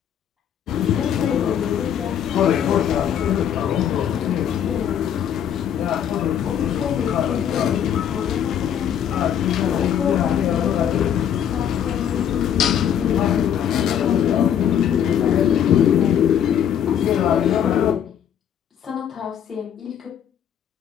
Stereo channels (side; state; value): right; quieter; 9.2 dB